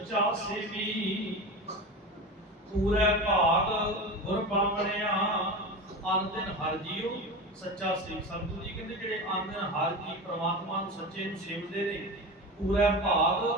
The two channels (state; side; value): normal; both; correlation 0.26